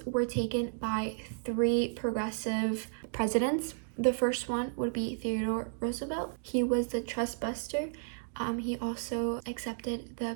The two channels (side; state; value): left; silent; digital silence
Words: were taken by three progressive presidents. The first one would be Theodore Roosevelt. He was the trust buster. He also accepted